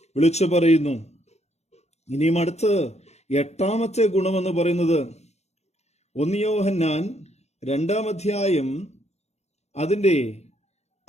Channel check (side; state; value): right; late; 0.32 ms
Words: വിളിച്ചു പറയുന്നു. ഇനിയും അടുത്ത് 8ാമത്തെ ഗുണമെന്ന് പറയുന്നത് 1 യോഹന്നാൻ 2-ാം അധ്യായം അതിന്റെ